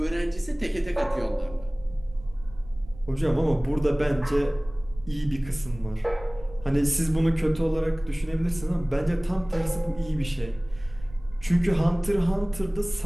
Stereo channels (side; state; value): right; noise; rumble, 19 dB below the sound